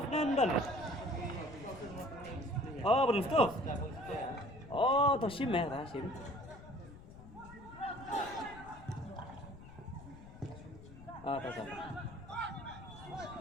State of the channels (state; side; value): noise; left; rumble, 16 dB below the sound